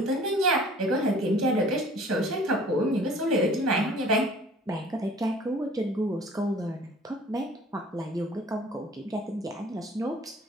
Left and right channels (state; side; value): normal; both; correlation 0.49